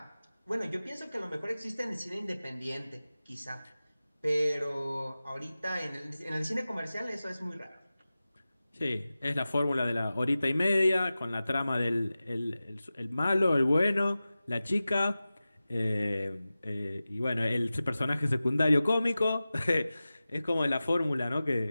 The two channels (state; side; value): inverted; both; correlation -0.96